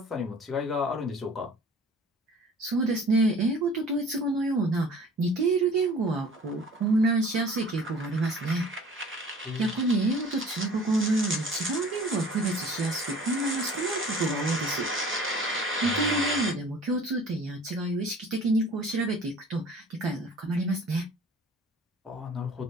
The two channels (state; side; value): normal; both; correlation 0.47